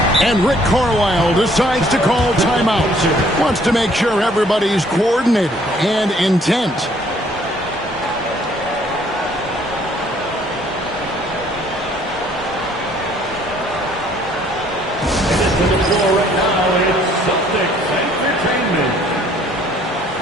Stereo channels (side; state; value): both; normal; correlation 0.61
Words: And Rick Carlisle decides to call timeout. Wants to make sure everybody's coordinated and intent.